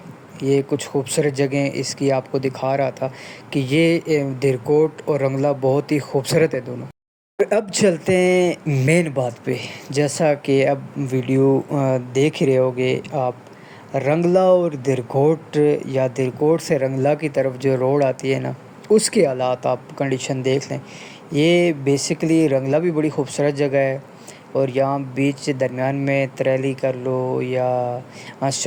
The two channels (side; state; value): both; identical; correlation 1.00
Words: یہ کچھ خوبصورت جگہیں اس کی آپ کو دکھا رہا تھا کہ یہ درکوٹ اور رنگلا بہت ہی خوبصورت ہے دونوں۔ اب چلتے ہیں مین بات پہ، جیسا کہ اب ویڈیو دیکھ رہے ہوگے آپ، رنگلا اور درکوٹ یا درکوٹ سے رنگلا کی طرف جو روڈ آتی ہے نا، اس کے حالات آپ کنڈیشن دیکھ لیں۔ یہ بیسیکلی رنگلا بھی بڑی خوبصورت جگہ ہے، اور یہاں بیچ درمیان میں تریلی کر لو یا